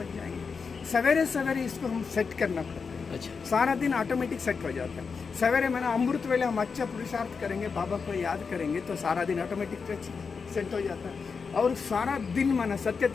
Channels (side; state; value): right; quieter; 5.3 dB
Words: जाएंगे। सवेरे सवेरे इसको हम सेट करना पड़ता है। अच्छा, सारा दिन ऑटोमेटिक सेट हो जाता है। सवेरे मैंने अमृत वेले हम अच्छा पुरुषार्थ करेंगे, बाबा को याद करेंगे तो सारा दिन ऑटोमेटिक सेट हो जाता है। और सारा दिन माना सत्य